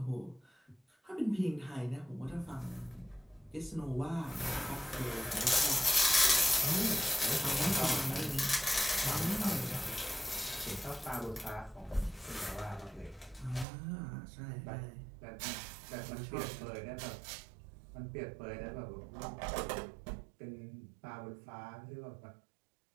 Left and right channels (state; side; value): drops out; left; at 13.7 s